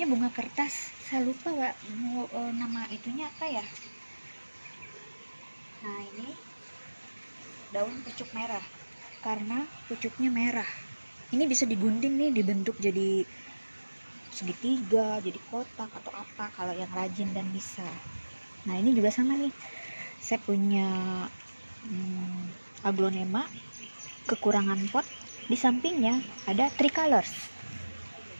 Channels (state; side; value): inverted; both; correlation -1.00